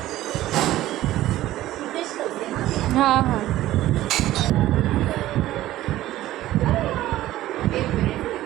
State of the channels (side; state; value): left; quieter; 14.9 dB